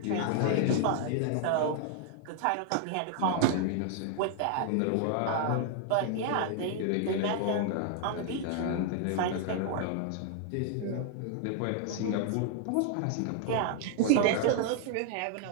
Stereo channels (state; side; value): different; both; correlation 0.00